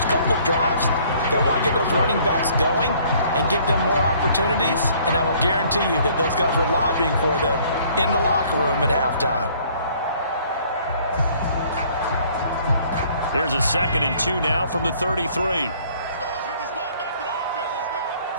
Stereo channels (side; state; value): both; inverted; correlation -0.58